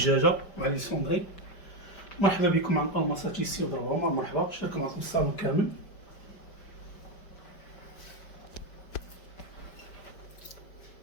مع لي سوندري. مرحبا بكم عن الماساتي سي ضرب عمر، مرحبا. شارك معكم الصالون كامل.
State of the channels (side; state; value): right; late; 5.1 ms